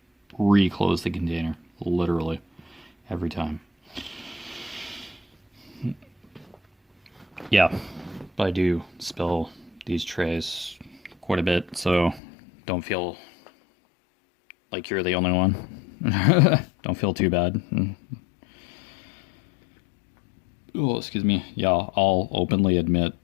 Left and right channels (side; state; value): right; drops out; at 12.2 s